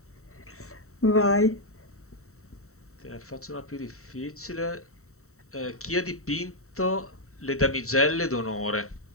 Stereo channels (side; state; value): right; late; 0.64 ms